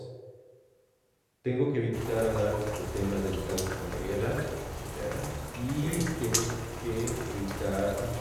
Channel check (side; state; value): both; identical; correlation 1.00